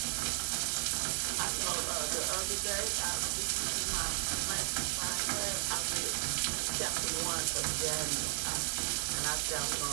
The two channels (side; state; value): left; silent; digital silence